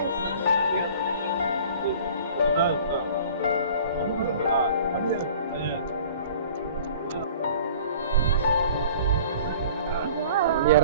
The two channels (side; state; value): both; inverted; correlation -0.47